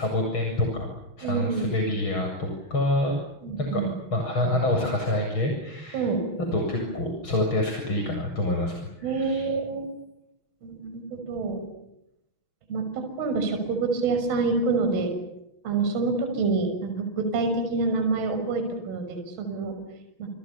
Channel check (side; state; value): right; late; 6.3 ms